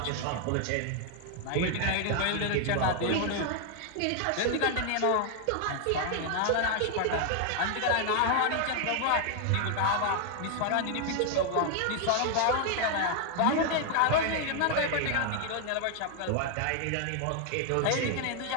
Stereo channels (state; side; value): different; both; correlation 0.00